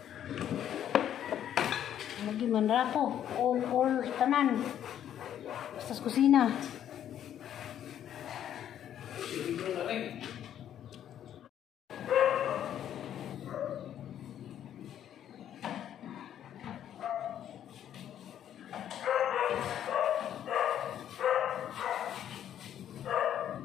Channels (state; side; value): quieter; right; 10.4 dB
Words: Lagi man rapo, all tanan. Basta sa kusina.